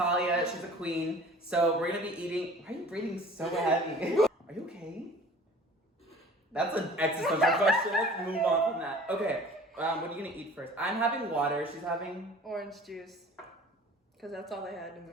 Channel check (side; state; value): both; normal; correlation 0.46